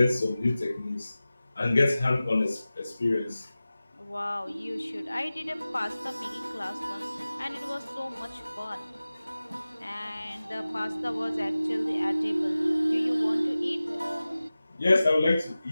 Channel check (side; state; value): both; inverted; correlation -0.97